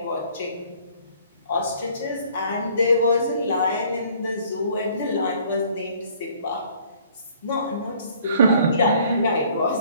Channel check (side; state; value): both; inverted; correlation -0.58